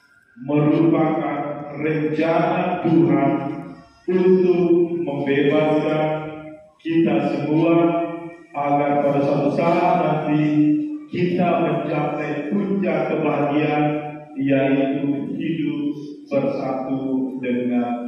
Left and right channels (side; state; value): both; identical; correlation 1.00